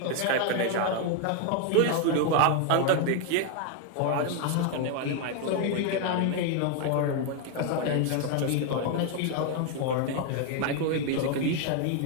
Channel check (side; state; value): both; different; correlation 0.00